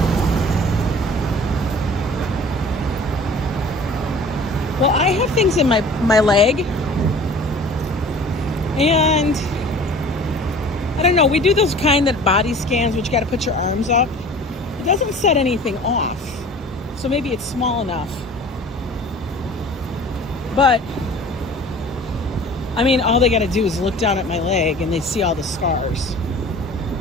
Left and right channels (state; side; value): normal; both; correlation 0.45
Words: Well, I have things in my leg, and I don't know. We do those kind that body scans, which you got to put your arms up. It doesn't set anything off. So maybe it's small enough. But, I mean, all they got to do is look down at my leg and they see all the scars.